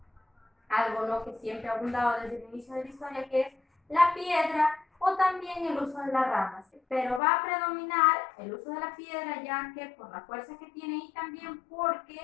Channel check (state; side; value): drops out; right; at 7.2 s